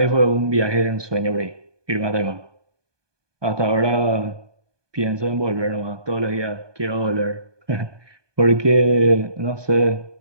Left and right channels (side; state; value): left; late; 1.2 ms